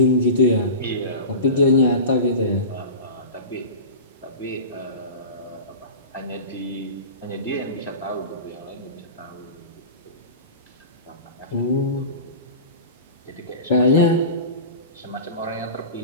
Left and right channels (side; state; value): both; inverted; correlation -0.32